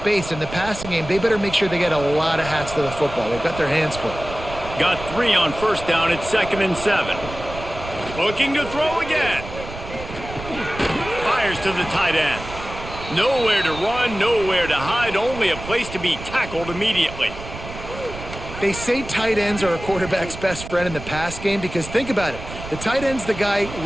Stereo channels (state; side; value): noise; right; rumble, 11 dB below the sound